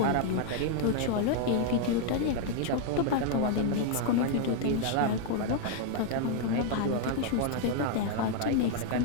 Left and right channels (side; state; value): both; different; correlation 0.00